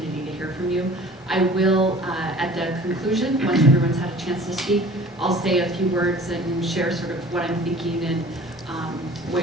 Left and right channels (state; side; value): normal; both; correlation 0.46